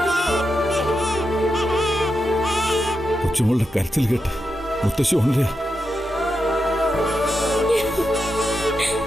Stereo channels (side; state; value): both; normal; correlation 0.87